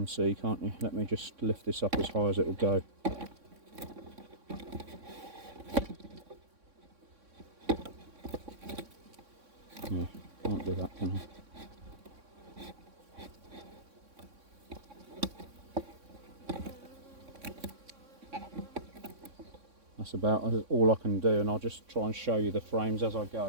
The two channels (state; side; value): late; left; 3.6 ms